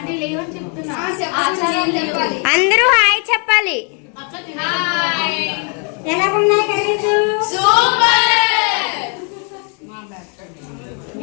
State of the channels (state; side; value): quieter; right; 39.2 dB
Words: అందరూ హాయ్ చెప్పాలి. ఎలా ఉన్నాయి కర్రీస్?